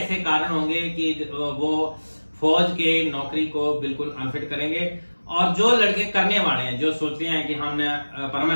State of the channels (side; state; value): both; inverted; correlation -1.00